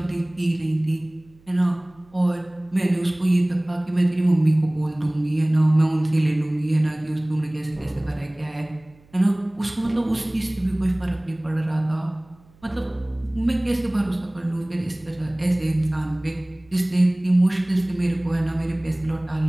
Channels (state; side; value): noise; right; hum, 29 dB below the sound